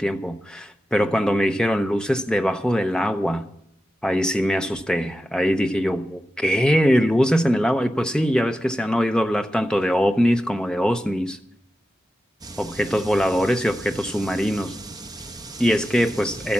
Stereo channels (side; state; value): both; normal; correlation 0.91